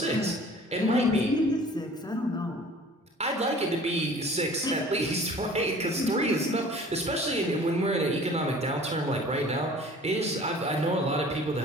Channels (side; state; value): both; normal; correlation 0.47